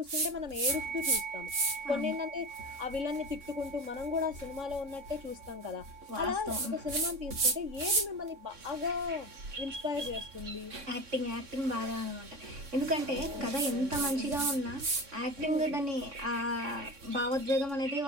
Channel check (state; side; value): late; left; 3.6 ms